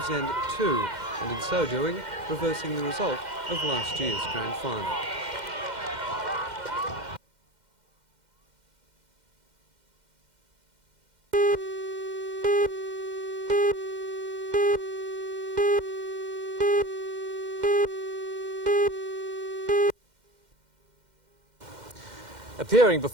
End 2, and in so doing, reversing the result of last year's grand final. Appearing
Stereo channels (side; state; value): left; late; 2.1 ms